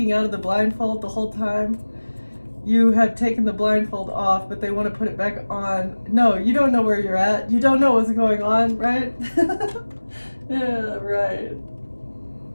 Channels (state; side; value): inverted; both; correlation -1.00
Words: out of the blindfold the whole time. You have taken the blindfold off, but they want to put it back on. No, you don't know where you're at. You don't know what's going on, right? Yeah, right.